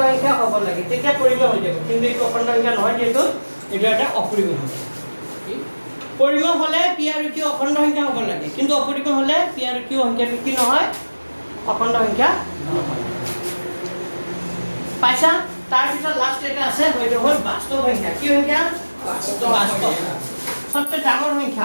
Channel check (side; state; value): both; inverted; correlation -1.00